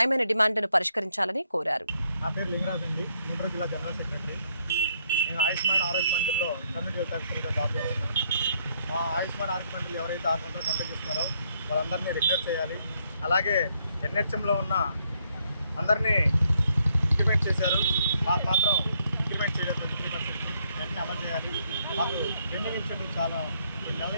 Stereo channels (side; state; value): both; inverted; correlation -0.72